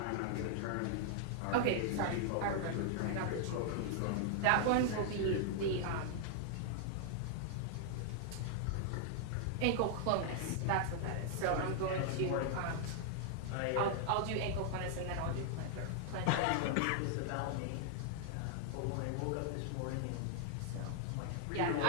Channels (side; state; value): both; different; correlation -0.01